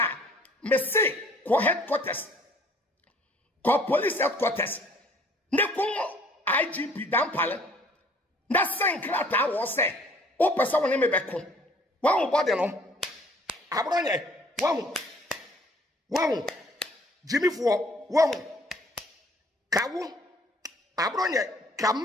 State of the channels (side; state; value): both; normal; correlation 0.57